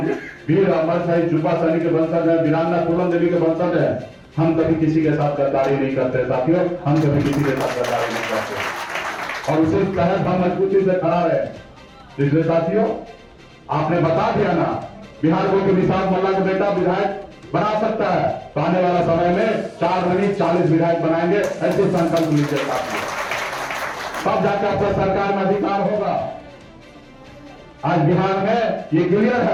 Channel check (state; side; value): identical; both; correlation 1.00